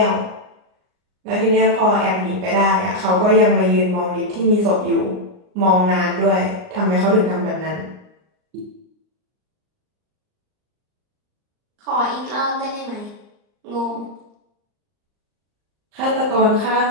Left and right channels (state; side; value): late; left; 39 ms